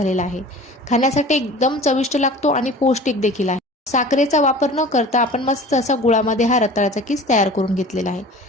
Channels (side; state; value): both; normal; correlation 0.41